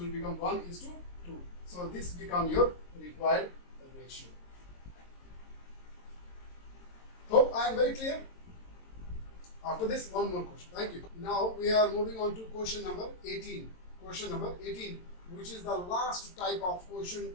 become 1 is to 2. So this becomes your required ratio. Hope I am very clear. After this, one more question. Thank you. Now we are moving on to question number 18. Question number 18, which is the last type of question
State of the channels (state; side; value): late; right; 22 ms